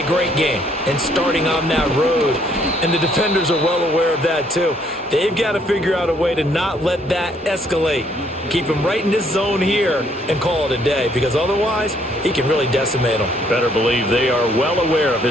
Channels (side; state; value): both; normal; correlation 0.66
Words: great game and starting on that road. And the defenders are well aware of that too. They've got to figure out a way to not let that escalate. Keep him right in this zone here and call it a day, because otherwise he can really decimate them. Better believe they are well aware of